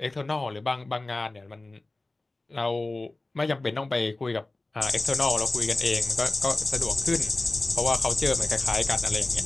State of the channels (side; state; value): right; quieter; 3.0 dB